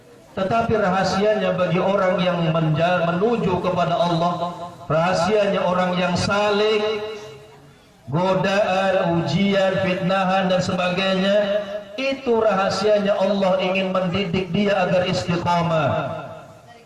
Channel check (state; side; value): identical; both; correlation 1.00